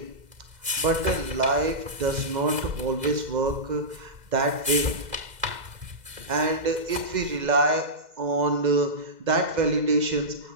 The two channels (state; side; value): late; left; 2.0 ms